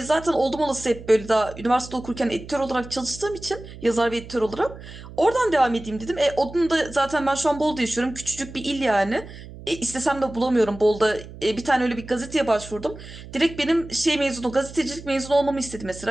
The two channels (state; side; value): noise; right; hum, 15 dB below the sound